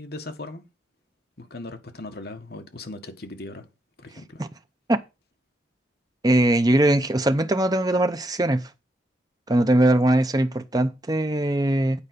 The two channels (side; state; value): both; normal; correlation 0.80